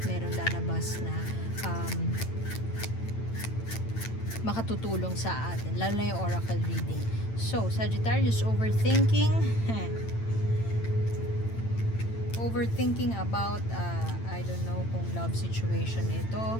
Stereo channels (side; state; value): right; late; 8.9 ms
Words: lalabas na makatutulong sa atin. Lalo na yung oracle reading. So, Sagittarius, overthinking. Overthinking about, I don't know kung love situation